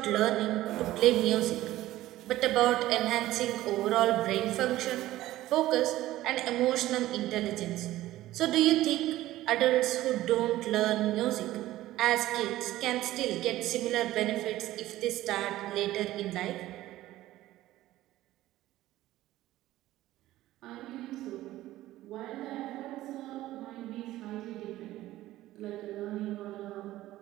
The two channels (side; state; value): left; quieter; 15.5 dB